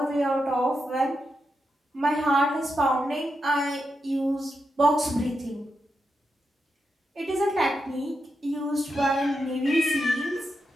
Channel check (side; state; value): both; normal; correlation 0.86